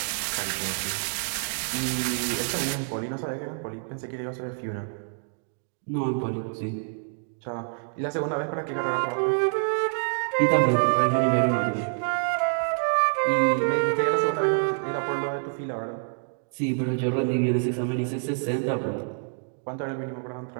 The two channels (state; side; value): silent; left; 60 dB below the other